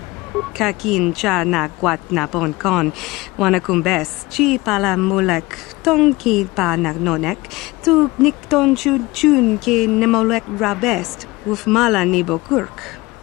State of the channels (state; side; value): quieter; right; 21.5 dB